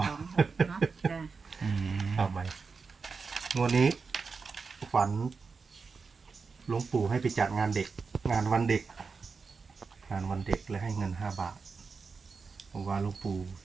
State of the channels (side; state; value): left; quieter; 4.9 dB